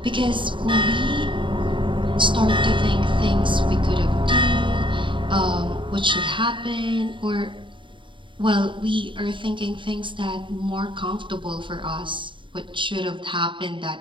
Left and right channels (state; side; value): late; left; 0.24 ms